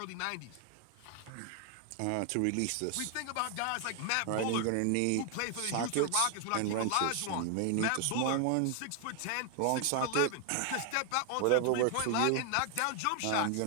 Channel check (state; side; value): different; both; correlation 0.00